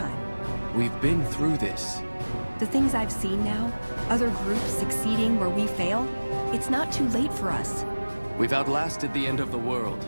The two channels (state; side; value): inverted; both; correlation -1.00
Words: We've been through this. The things I've seen now, other groups succeeding where we fail, it's not too late for us. We've outlasted the end of the world.